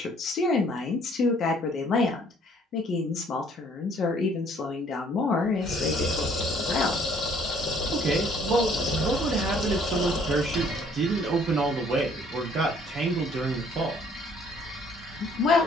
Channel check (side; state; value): both; normal; correlation 0.60